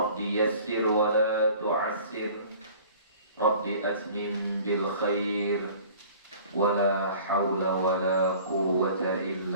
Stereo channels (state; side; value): inverted; both; correlation -0.48